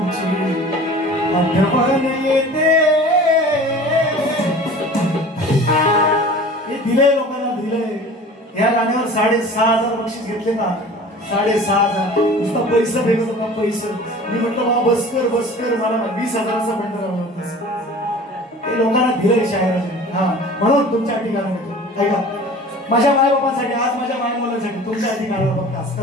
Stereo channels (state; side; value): normal; both; correlation 0.42